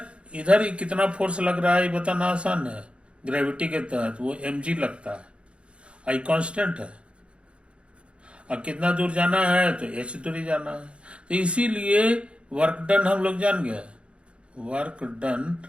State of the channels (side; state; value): left; late; 0.058 ms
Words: इधर ही कितना फोर्स लग रहा है ये बताना आसान है, ग्रेविटी के तहत वो mg लगता है, आई कांस्टेंट है, और कितना दूर जाना है तो h दूरी जाना है। तो इसीलिए वर्क डन हम लोग जान गए, वर्क डन